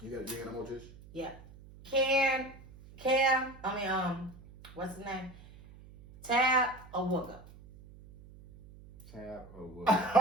got no more Trish? Yeah. What's his name? Tab or Wooga? Tab or Wooga?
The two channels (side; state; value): right; noise; hum, 20 dB below the sound